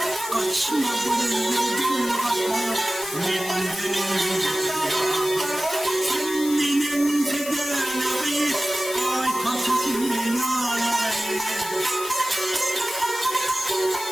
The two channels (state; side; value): noise; left; hiss, 9 dB below the sound